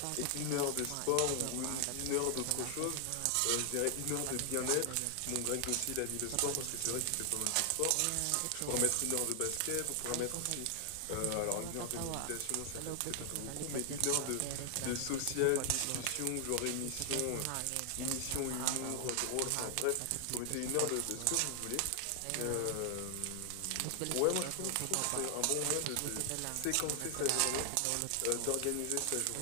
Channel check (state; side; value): different; both; correlation 0.00